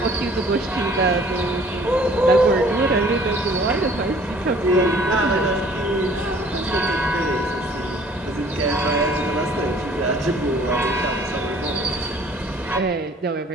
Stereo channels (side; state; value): both; normal; correlation 0.54